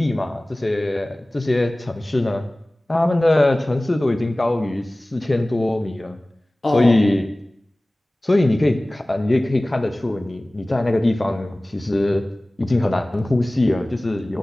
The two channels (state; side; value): normal; both; correlation 0.98